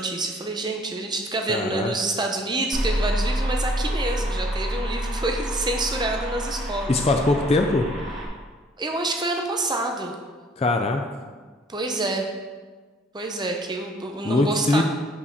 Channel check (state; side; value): normal; both; correlation 0.58